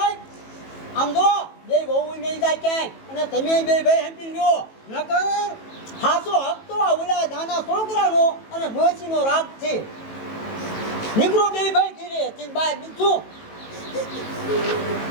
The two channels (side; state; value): right; late; 18 ms